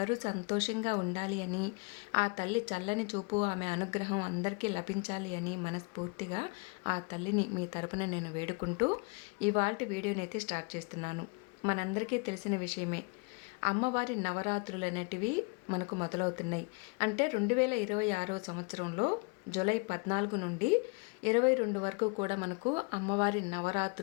సంతోషంగా ఉండాలి అని, ఆ తల్లి చల్లని చూపు ఆమె అనుగ్రహం అందరికీ లభించాలి అని మనస్ఫూర్తిగా ఆ తల్లిని మీ తరపున నేను వేడుకుంటూ ఇవాల్టి వీడియోని అయితే స్టార్ట్ చేస్తున్నాను. మనందరికీ తెలిసిన విషయమే, అమ్మవారి నవరాత్రులు అనేటివి మనకు మొదలవుతున్నాయి. అంటే 2026 సంవత్సరంలో జూలై 14 నుండి 22 వరకు కూడా మనకు అమ్మవారి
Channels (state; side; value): quieter; right; 32.2 dB